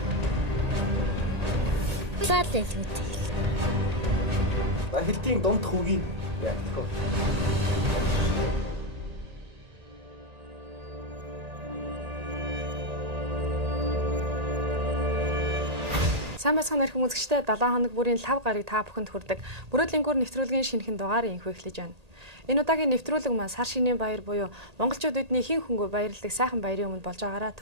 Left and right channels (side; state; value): left; late; 1.8 ms